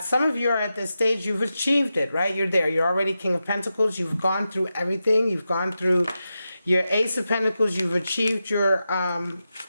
Some of you are at this stage. You've achieved it, right? You're there. You're already King of Pentacles. You've gone through everything. You've gone through your Ace of Pentacles. You've achieved your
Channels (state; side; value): inverted; both; correlation -0.90